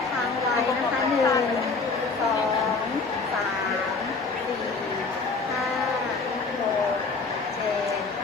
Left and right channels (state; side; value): quieter; right; 4.2 dB